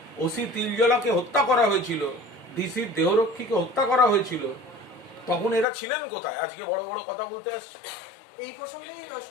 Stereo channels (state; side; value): drops out; right; at 5.7 s